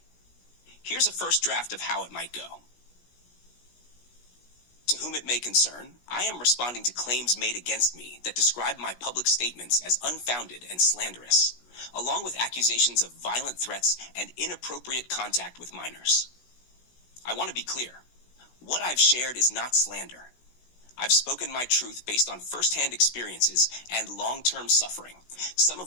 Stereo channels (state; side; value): late; right; 16 ms